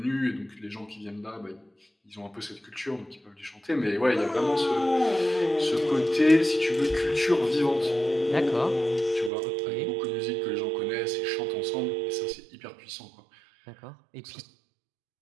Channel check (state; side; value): drops out; left; at 9.3 s